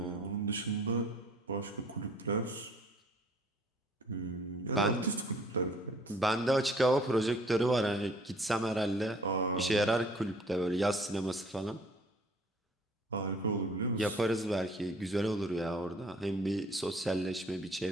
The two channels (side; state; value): both; normal; correlation 0.55